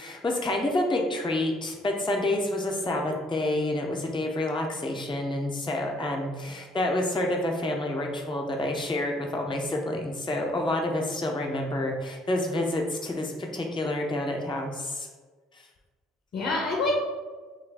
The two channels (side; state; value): both; normal; correlation 0.65